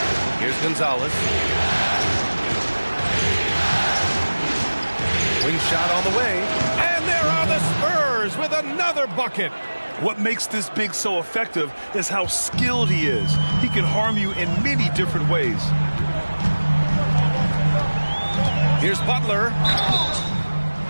Here's Gonzalez. Wing shot on the way. And there are the Spurs with another bucket. What makes this big so effective is how skilled he is. He can harm you in many different ways. Here's Butler.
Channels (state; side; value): inverted; both; correlation -1.00